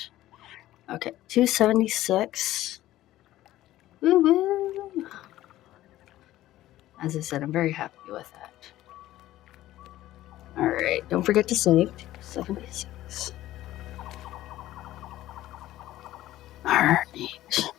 Okay, 276. Woo woo. As I said, I'm very happy with that. All right, don't forget to save. 276. Alright,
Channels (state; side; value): quieter; right; 14.8 dB